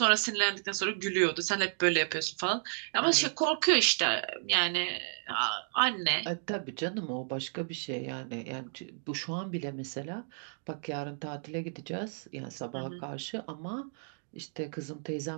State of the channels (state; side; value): silent; left; digital silence